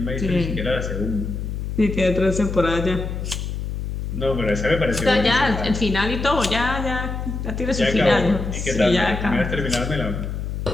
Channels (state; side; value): noise; left; hum, 4 dB below the sound